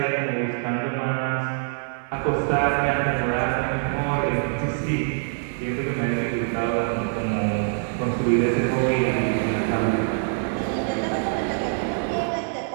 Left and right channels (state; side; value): silent; left; 62 dB below the other